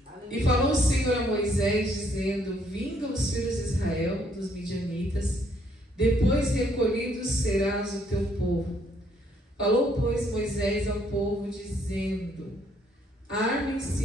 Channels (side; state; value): both; normal; correlation 0.68